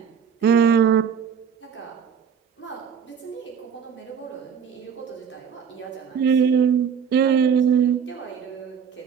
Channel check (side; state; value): left; quieter; 7.2 dB